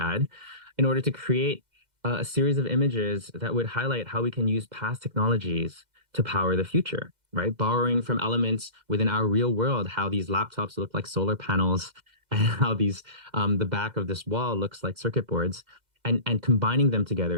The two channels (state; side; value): late; left; 2.0 ms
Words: in order to create a series of images that would highlight how we can use past technologies to power the future, right? Borrowing from elements within our real world, how these laptops look like solar panels and how these the back of this wall looks like circuit boards, and combining them